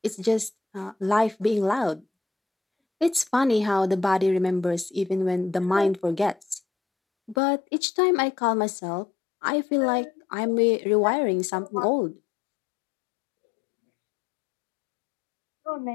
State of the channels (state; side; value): drops out; right; at 7.4 s